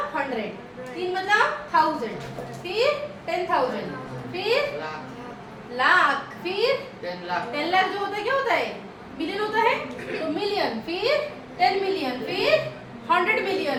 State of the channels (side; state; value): both; identical; correlation 1.00